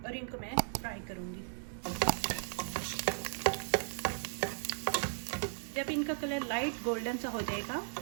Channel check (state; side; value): silent; left; 54 dB below the other